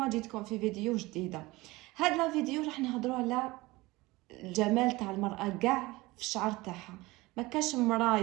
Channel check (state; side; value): quieter; left; 21.0 dB